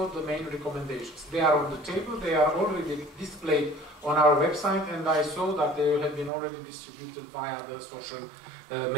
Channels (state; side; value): drops out; left; at 6.3 s